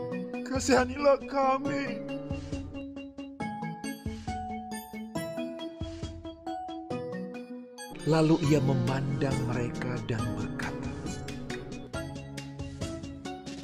kasihanilah kami." Lalu ia memandang mereka dan berkata,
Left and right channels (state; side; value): identical; both; correlation 1.00